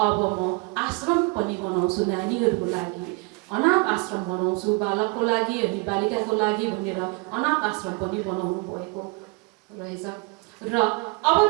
म आश्रम पनि बनाउँछु नानीहरूको लागि, अनाथ आश्रम बनाउँछु बालकको लागि अनि बालिकाको लागि भनेर अनाथ आश्रम पनि बनाउनु भएको रहेछ। र अब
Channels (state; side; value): quieter; left; 29.3 dB